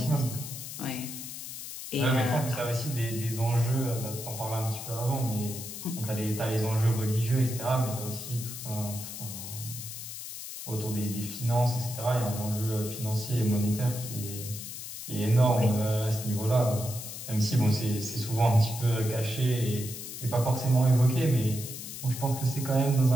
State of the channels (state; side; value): noise; left; hiss, 9 dB below the sound